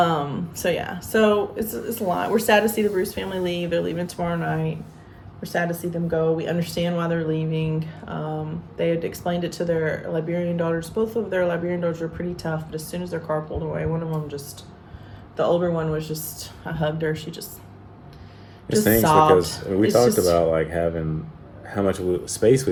it's a lot. We're sad to see the Bruce family leave. They're leaving tomorrow night. We're sad to see them go. We understand why they're leaving. They had explained it to their Liberian daughters. Both of their Liberian daughters were pretty tough, but as soon as their car pulled away, one of them the older one was just, I hugged her. She just stinks sobbed. Because we talked about like having how much space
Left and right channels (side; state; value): both; identical; correlation 1.00